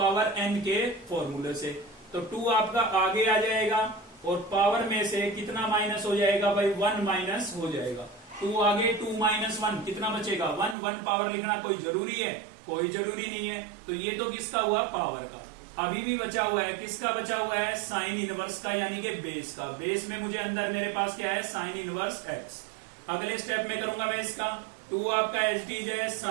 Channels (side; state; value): left; drops out; at 10.8 s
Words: n के फॉर्मूले से। तो 2 आपका आगे आ जाएगा और पावर में से कितना माइनस हो जाएगा भाई, 1 माइनस हो जाएगा। 2 आगे 2 माइनस 1 कितना बचेगा, 1। 1 पावर लिखना कोई जरूरी है, कोई जरूरी नहीं है। तो ये तो किसका हुआ, पावर का। अभी भी बचा हुआ है, किसका बचा हुआ है, साइन इनवर्स का, यानी कि बेस का। बेस में मुझे अंदर मेरे पास क्या है, साइन इनवर्स x। अगले स्टेप में करूंगा मैं इसका 2 आपका एच डीज है